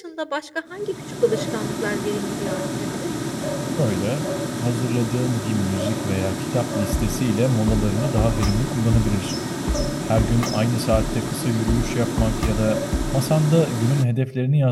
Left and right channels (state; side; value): identical; both; correlation 1.00